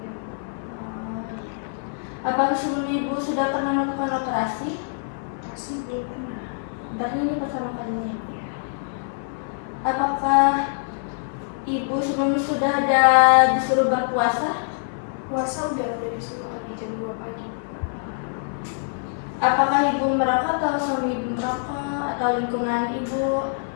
Apakah sebelum Ibu sudah pernah melakukan operasi? Masih belum pernah. Berarti ini pertama kalinya. Apakah Ibu sebelumnya sudah ada disuruh berpuasa? Puasa udah disuruh pagi jam 2 pagi. Apakah Ibu merokok atau suami Ibu merokok atau lingkungan Ibu?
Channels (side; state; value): right; silent; 59 dB below the other